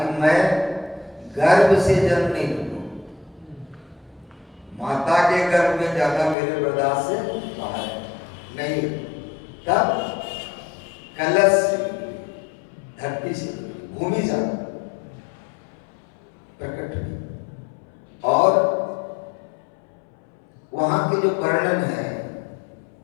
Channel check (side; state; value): right; drops out; at 6.4 s